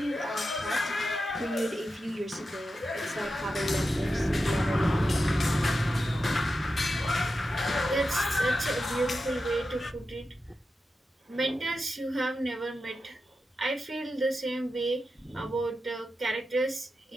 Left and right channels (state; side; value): normal; both; correlation 0.90